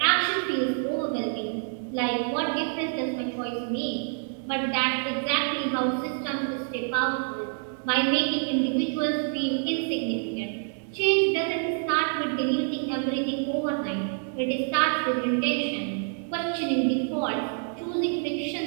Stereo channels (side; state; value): left; silent; 60 dB below the other